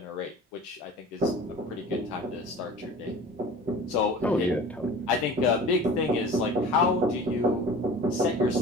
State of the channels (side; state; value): both; normal; correlation 0.41